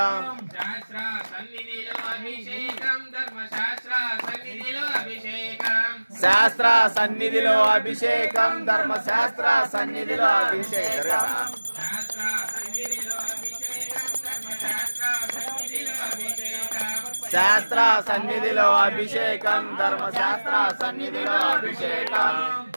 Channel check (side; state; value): both; inverted; correlation -1.00